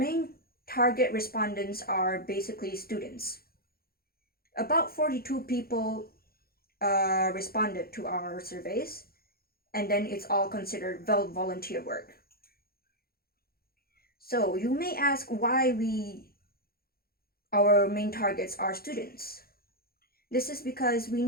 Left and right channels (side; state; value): right; late; 0.44 ms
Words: target respondents are basically students. About 42 people responded to our surveys, and then it's all considered volunteer work. So you may ask why our main targets are students. This is because we